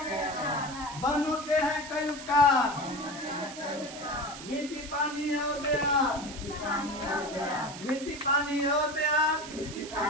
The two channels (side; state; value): right; noise; hiss, 12 dB below the sound